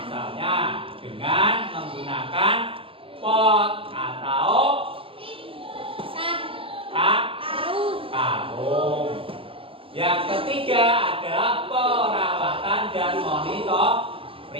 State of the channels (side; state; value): left; late; 0.26 ms